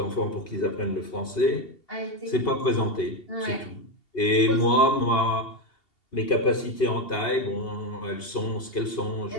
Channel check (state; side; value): late; right; 2.7 ms